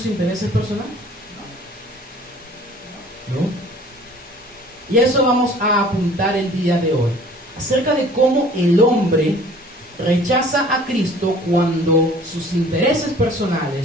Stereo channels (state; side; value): normal; both; correlation 0.50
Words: intereses personales? ¿No? Y a eso vamos a apuntar el día de hoy, acerca de cómo el hombre rechaza a Cristo cuando sus intereses